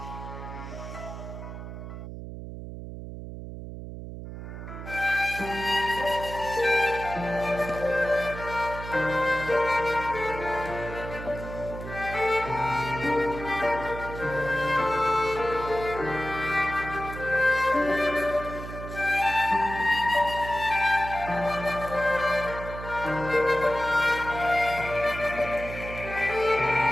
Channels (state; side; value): noise; right; hum, 10 dB below the sound